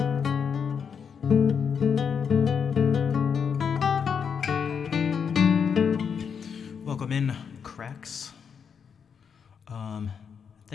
Welcome in, cracks.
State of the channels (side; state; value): right; quieter; 6.8 dB